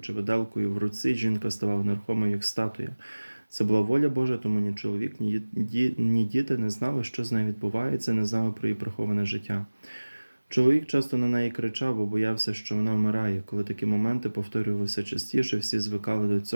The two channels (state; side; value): inverted; both; correlation -1.00